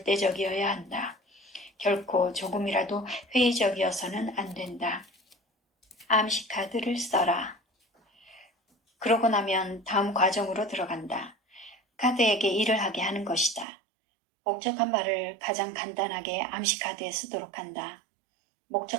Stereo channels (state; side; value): drops out; left; at 13.7 s